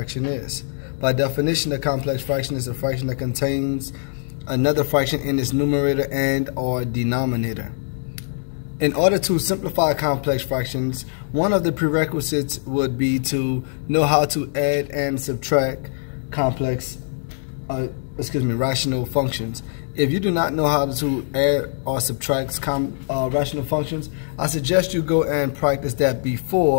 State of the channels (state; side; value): silent; right; digital silence